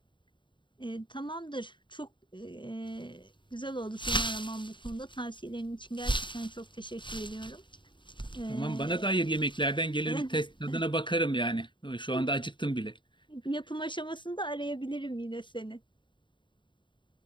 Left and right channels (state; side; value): late; right; 0.23 ms